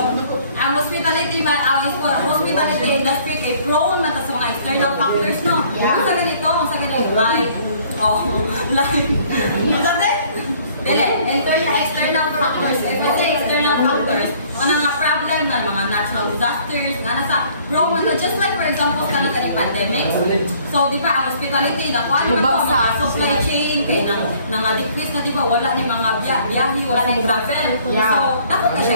ang hospitality industry kay prone na sa mga external factors, no? Kung sa ganito, external factors. If we say external factors, mga problem na mga natural disasters, prone na just like for example kanang pandemic. So di ba ang hospitality na kuan mo sa supply chain kay nang decrease na di ba wala ni mga biyahe, wala ni travel. So dapat na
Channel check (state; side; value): inverted; both; correlation -0.58